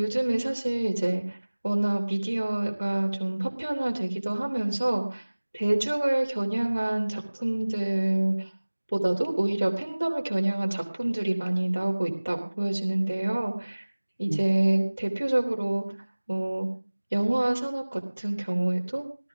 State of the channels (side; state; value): both; inverted; correlation -1.00